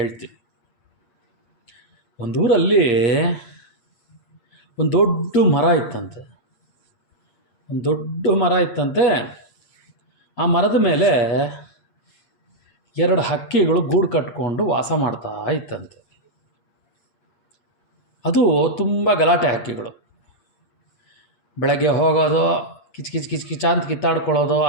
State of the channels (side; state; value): right; late; 8.5 ms